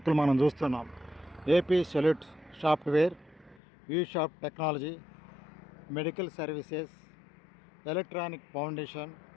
మనం చూస్తున్నాం. AP solute software, you shop technology, medical services, electronic foundation,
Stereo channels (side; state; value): right; drops out; at 3.6 s